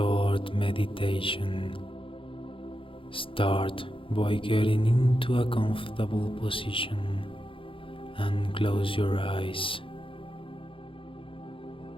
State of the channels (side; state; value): right; late; 0.25 ms